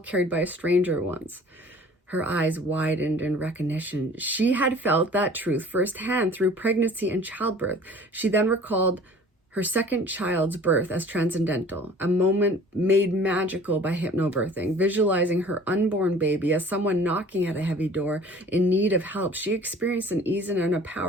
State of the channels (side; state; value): both; normal; correlation 0.48